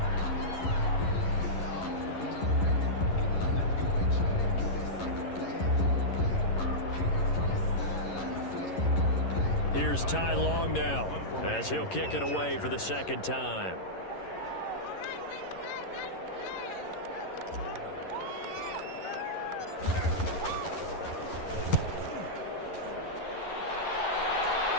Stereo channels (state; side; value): late; right; 11 ms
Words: Here's Ty Long now as he'll kick it away for the 2nd time.